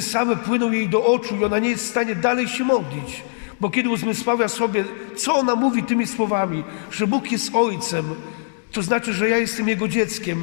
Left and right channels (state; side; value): silent; right; digital silence